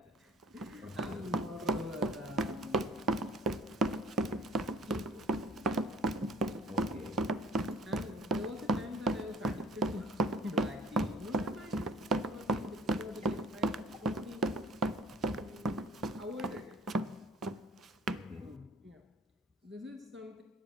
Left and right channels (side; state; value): both; normal; correlation 0.53